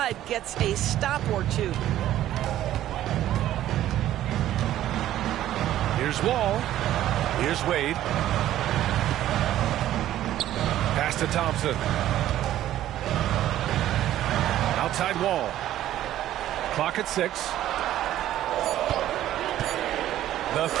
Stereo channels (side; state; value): left; quieter; 12.9 dB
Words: gets a stop or two. Here's Wall. Here's Wade. Pass to Thompson. Outside Wall. Clock at 6. The